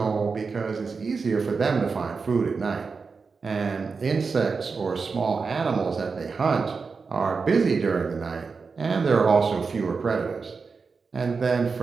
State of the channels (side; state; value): left; quieter; 4.9 dB